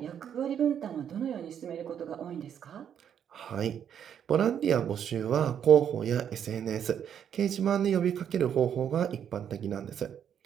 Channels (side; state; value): left; quieter; 8.8 dB